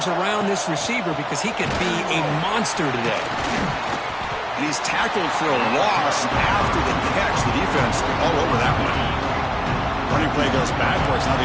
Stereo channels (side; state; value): both; identical; correlation 1.00